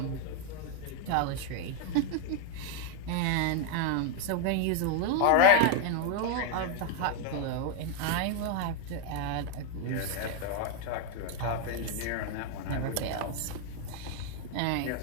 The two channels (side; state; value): both; different; correlation 0.00